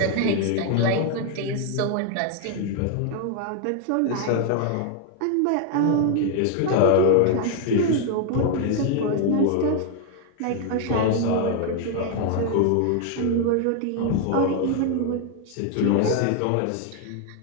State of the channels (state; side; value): different; both; correlation 0.00